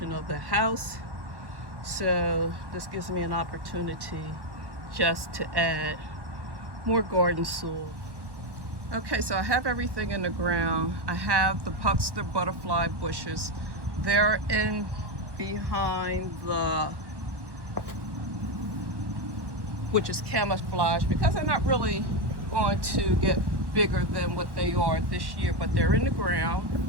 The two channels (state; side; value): late; left; 1.1 ms